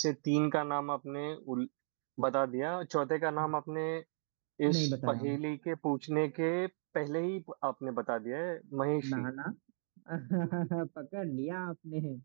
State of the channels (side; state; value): left; silent; digital silence